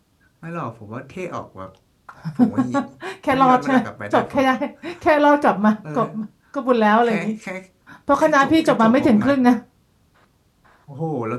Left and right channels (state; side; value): identical; both; correlation 1.00